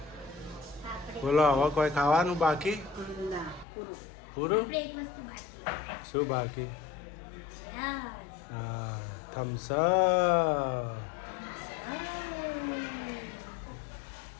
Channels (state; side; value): drops out; right; at 3.7 s